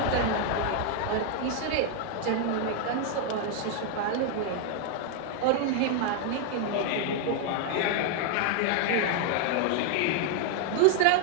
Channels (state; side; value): different; both; correlation 0.00